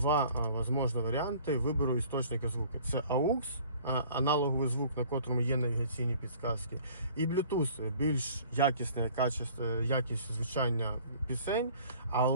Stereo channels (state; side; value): inverted; both; correlation -0.51